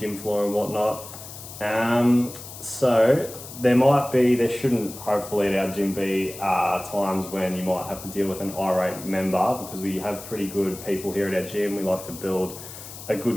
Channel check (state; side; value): noise; left; hiss, 14 dB below the sound